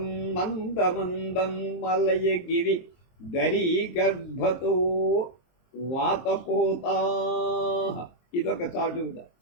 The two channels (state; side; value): late; right; 23 ms